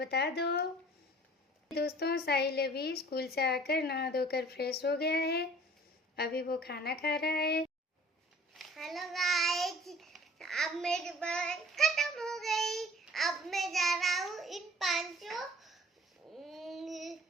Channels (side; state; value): both; normal; correlation 0.50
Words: दो। दोस्तों साहिल अभी स्कूल से आकर नहा धोकर फ्रेश हो गया है। अभी वो खाना खा रहा है। हेलो गाइस, अब मेरी बात खत्म हो गई। अब मैं जा रहा हूँ इन 5